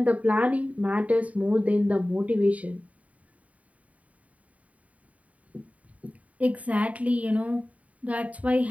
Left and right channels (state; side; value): late; left; 0.068 ms